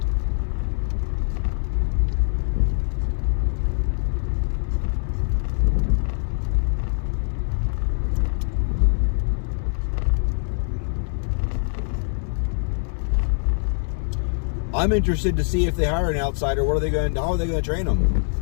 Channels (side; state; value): right; silent; digital silence